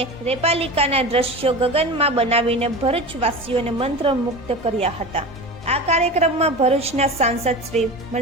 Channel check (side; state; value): both; normal; correlation 0.30